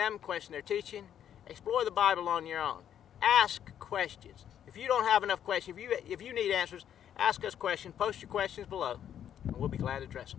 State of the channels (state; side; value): quieter; right; 9.8 dB